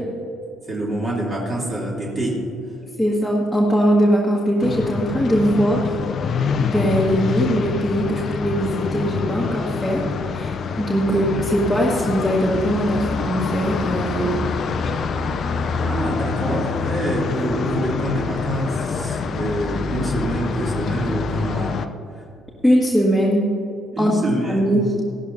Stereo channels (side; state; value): both; normal; correlation 0.76